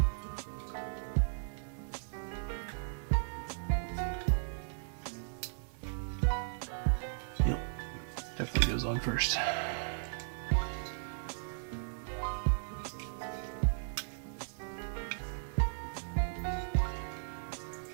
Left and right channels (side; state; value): left; silent; digital silence